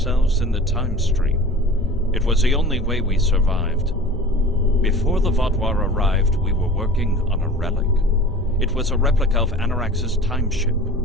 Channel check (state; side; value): normal; both; correlation 0.42